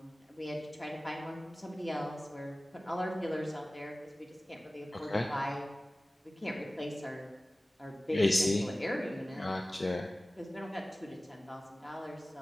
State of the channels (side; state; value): both; normal; correlation 0.97